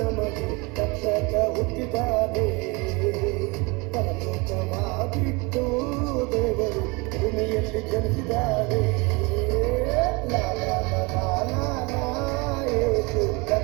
ರಕ್ಷಕ ಹುಟ್ಟಿದ್ದಾನೆ. ಪರಲೋಕವ ಬಿಟ್ಟು ದೇವರು ಭೂಮಿಯಲ್ಲಿ ಜನಿಸಿದ್ದಾನೆ. ಲಾ ಲಾ ಲಾ ಲಾ ಲಾ ಲಾ, ಯೇಸು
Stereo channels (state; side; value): quieter; left; 27.4 dB